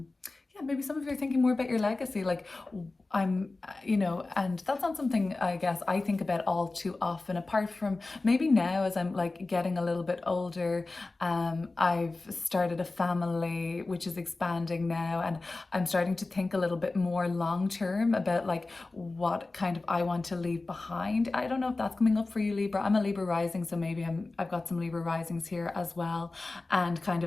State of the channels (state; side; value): quieter; right; 3.3 dB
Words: maybe some of you are thinking more about your legacy. Like you know, and that's not something I guess I think about all too often, apart from maybe now as I'm like getting a little bit older. I've started a family which is expanding now, and I'm starting to think a little bit more long term about like what kind of I want to leave behind. I don't know if that's coming up for you, Libra. I'm a Libra rising, so maybe I've got some Libra risings here as well, and kind